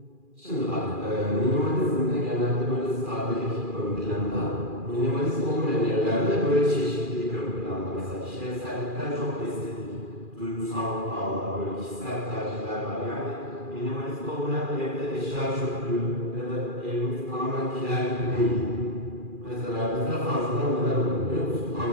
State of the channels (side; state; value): left; late; 2.4 ms